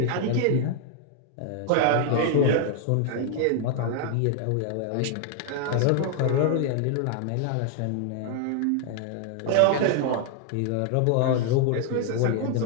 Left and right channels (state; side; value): different; both; correlation 0.00